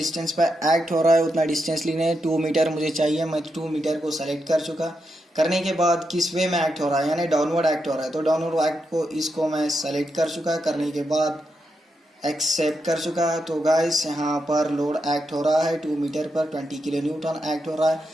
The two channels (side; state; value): both; normal; correlation 0.84